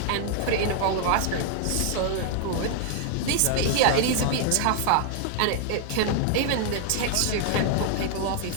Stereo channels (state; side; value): different; both; correlation 0.00